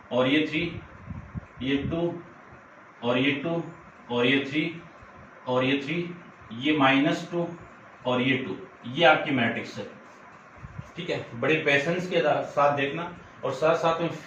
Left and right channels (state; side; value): identical; both; correlation 1.00